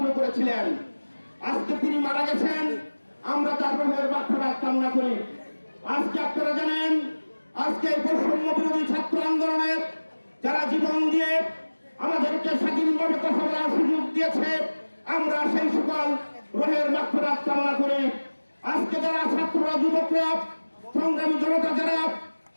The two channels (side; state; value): both; inverted; correlation -1.00